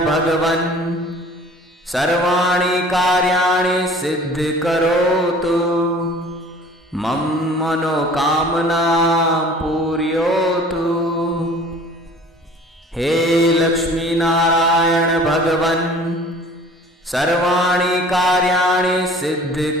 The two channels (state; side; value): normal; both; correlation 0.48